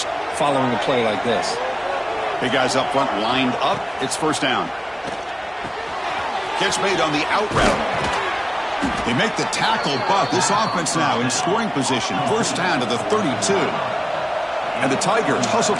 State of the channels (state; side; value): identical; both; correlation 1.00